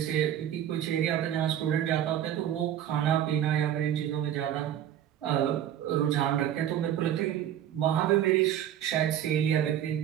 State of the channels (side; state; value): left; quieter; 10.8 dB